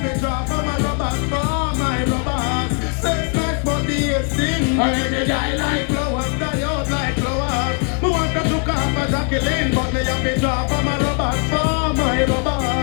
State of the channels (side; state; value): right; quieter; 37.8 dB